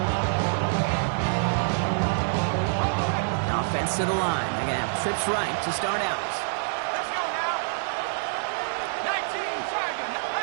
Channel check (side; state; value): left; silent; 61 dB below the other